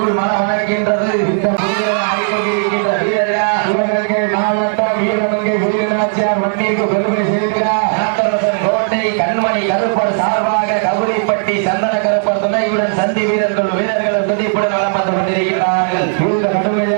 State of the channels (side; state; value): left; silent; digital silence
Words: மனம் அணைக்கின்றது. இந்த புதிய வீரர்கள் சிவகங்கை மாவட்டம் வீரமங்கை வீரநாச்சியார் வண்டிக்கு பெருமை சேர்க்கிறார். நாட்டரசன் கோட்டை கண்மணி கருப்பர் சார்பாக கவுரிப்பட்டி சந்தன கருப்பர் துணையுடன் சந்தி வீரர்களும் துணைப்புடன் வளம் வந்து கொண்டிருக்கிறார்கள். இந்த